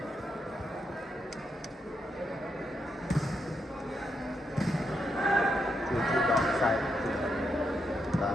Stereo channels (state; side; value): normal; both; correlation 0.81